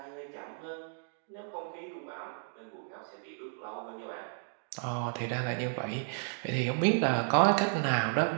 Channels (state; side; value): silent; left; digital silence